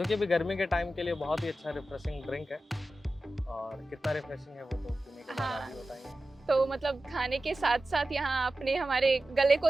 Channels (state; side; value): normal; both; correlation 0.94